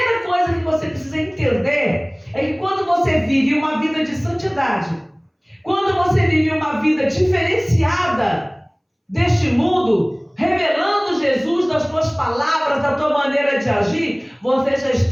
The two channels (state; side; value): identical; both; correlation 1.00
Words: coisa que você precisa entender é que quando você vive uma vida de santidade, quando você vive uma vida diferenciada deste mundo, revelando Jesus nas tuas palavras, da tua maneira de agir, você já